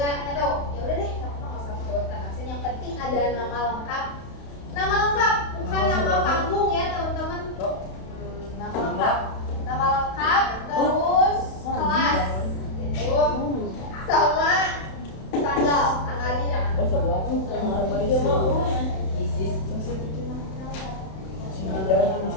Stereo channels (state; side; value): late; right; 31 ms